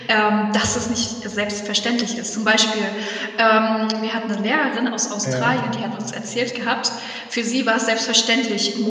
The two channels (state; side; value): identical; both; correlation 1.00